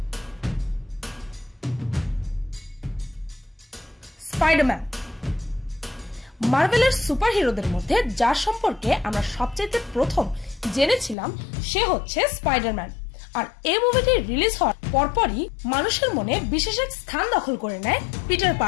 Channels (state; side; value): drops out; right; at 11.2 s